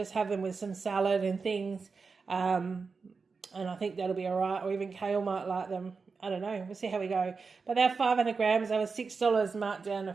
have them with some salad and things. And I think that'll be all right. Or even Kale might like them. I don't know. We'll see how we go. But they're 500 grams. They were $6 marked down to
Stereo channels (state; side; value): quieter; left; 4.8 dB